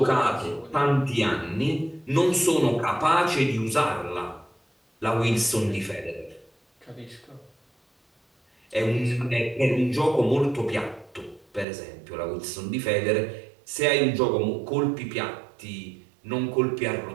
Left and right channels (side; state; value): left; drops out; at 11.7 s